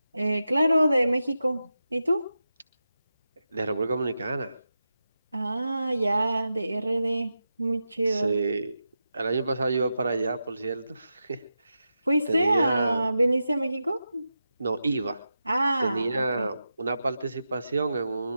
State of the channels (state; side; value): inverted; both; correlation -0.90